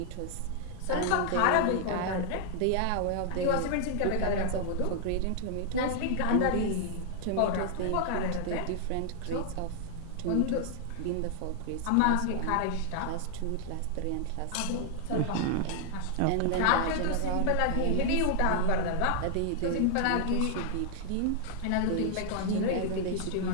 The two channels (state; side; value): different; both; correlation 0.00